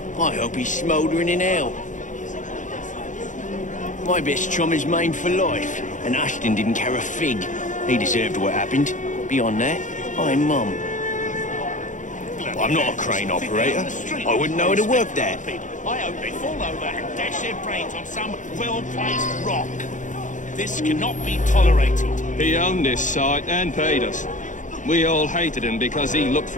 I hope he's smouldering in hell. My best chum is maimed for life, and Ashton didn't care a fig. He deserved what happened. Beyond that, I'm mum. I'm not a crane operator. I wouldn't know how to work that. I hope they fall over and dash their brains on some well-placed rock. This cannot be tolerated. He owned this site and paid us. We all hated him because he looked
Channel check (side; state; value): right; late; 0.37 ms